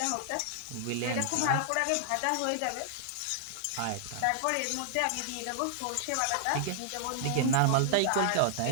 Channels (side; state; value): both; different; correlation -0.01